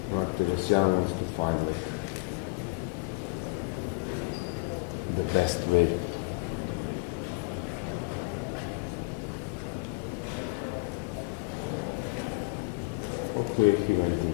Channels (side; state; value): right; quieter; 27.2 dB